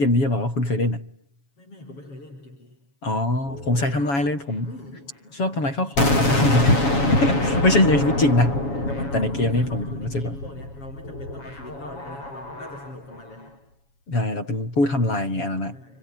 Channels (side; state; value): right; late; 7.2 ms